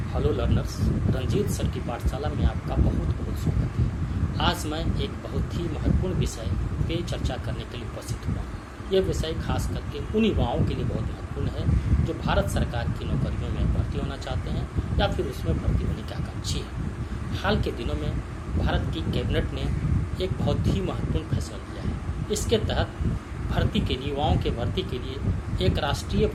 Hello learners, Ranjit sir की पाठशाला में आपका बहुत बहुत स्वागत है। आज मैं एक बहुत ही महत्वपूर्ण विषय पे चर्चा करने के लिए उपस्थित हुआ। यह विषय खास करके उन युवाओं के लिए बहुत महत्वपूर्ण है जो भारत सरकार की नौकरियों में भर्ती होना चाहते हैं या फिर उसमें भर्ती होने के आकांक्षी हैं। हाल के दिनों में भारत की कैबिनेट ने एक बहुत ही महत्वपूर्ण फैसला लिया है। इसके तहत भर्ती के लिए युवाओं के भर्ती के लिए एक राष्ट्रीय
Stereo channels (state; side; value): identical; both; correlation 1.00